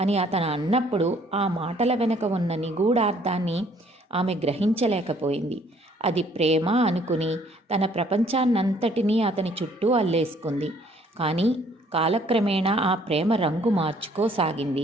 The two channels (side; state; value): both; normal; correlation 0.61